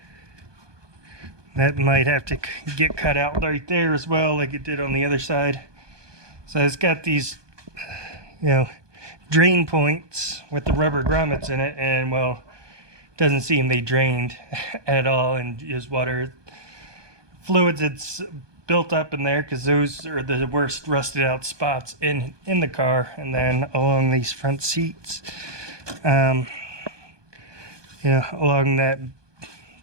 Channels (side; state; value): left; late; 1.2 ms